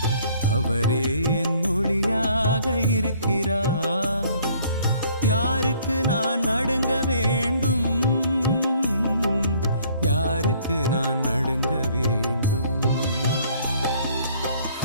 அவரே என் ஒளியாக இருக்கிறார், யாருக்கு நான் நடுங்க வேண்டும்? யாருக்கு நான் நடுங்க வேண்டும்?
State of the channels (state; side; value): inverted; both; correlation -0.60